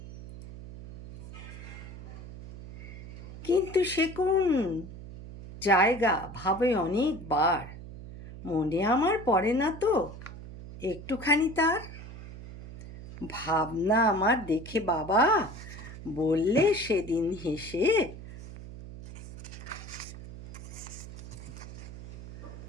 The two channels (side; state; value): right; noise; hum, 13 dB below the sound